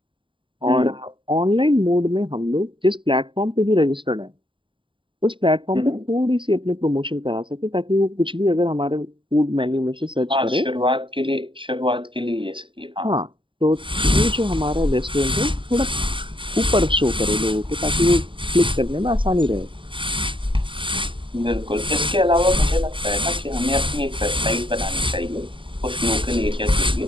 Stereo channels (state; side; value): late; left; 0.24 ms